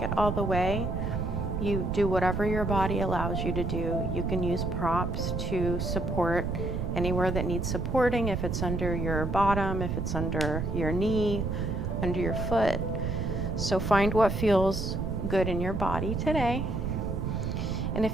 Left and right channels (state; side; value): noise; right; rumble, 2 dB below the sound